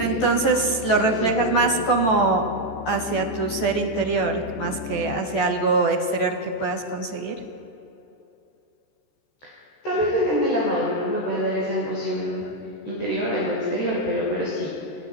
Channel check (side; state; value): right; late; 14 ms